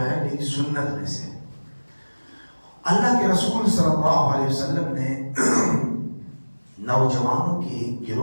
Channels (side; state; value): both; inverted; correlation -1.00